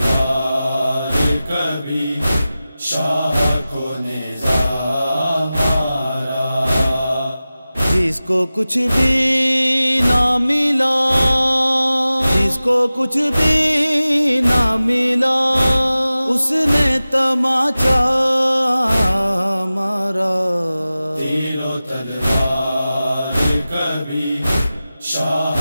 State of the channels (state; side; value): inverted; both; correlation -0.96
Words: کبھی شاہ کو نظام مارا۔ جس کو کچھ بھی نہ ملا، جس کو کچھ بھی نہ ملا، اس نے تماچا مارا۔ تیر و تلوار کبھی شاہ